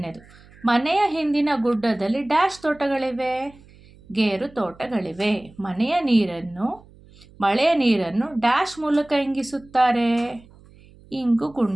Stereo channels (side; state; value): right; noise; hum, 25 dB below the sound